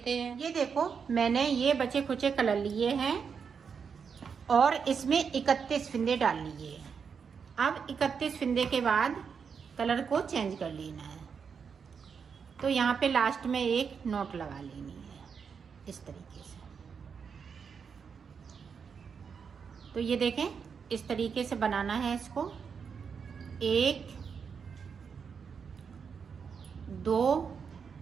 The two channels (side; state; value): left; quieter; 6.3 dB